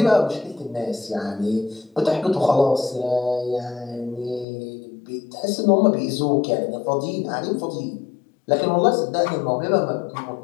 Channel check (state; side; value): drops out; right; at 4.5 s